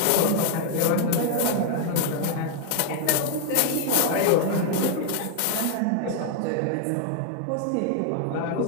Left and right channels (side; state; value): both; different; correlation 0.01